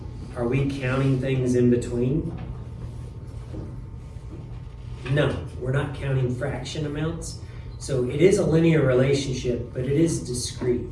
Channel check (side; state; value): both; identical; correlation 1.00